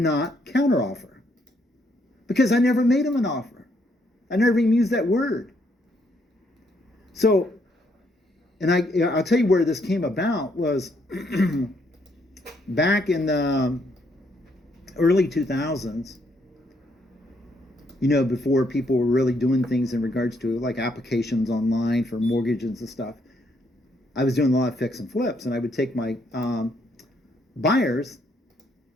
counter offer because I never made them an offer. I never even used that word. So, and I'll tell you where this came about was back in the early 2000s, before people were really doing things in regards to like applications online for mortgages and stuff. I was doing a lot of fix and flips, and I would take my buyers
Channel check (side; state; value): both; normal; correlation 0.72